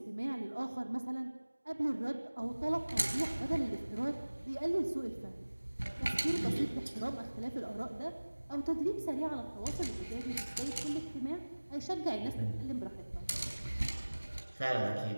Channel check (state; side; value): inverted; both; correlation -1.00